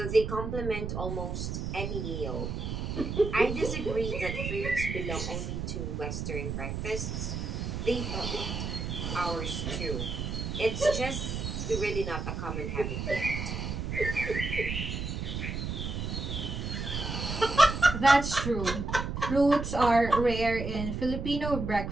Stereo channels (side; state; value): right; noise; rumble, 4 dB below the sound